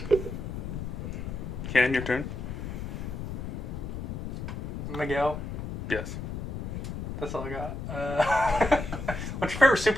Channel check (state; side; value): noise; left; rumble, 5 dB below the sound